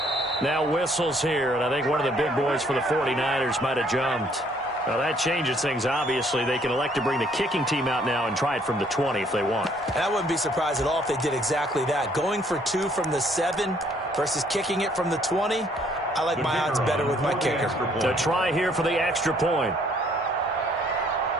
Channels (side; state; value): both; normal; correlation 0.64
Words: Now whistles here, and I think one of the big boys for the 49ers might have jumped. Well, that changes things, obviously. They can elect to bring the kicking team out now and try it from the 20 if they want. And I wouldn't be surprised at all if they did exactly that. Going for 2 from the 7 versus kicking it from the 20, I like my odds better with my kicker. To try here for the extra point.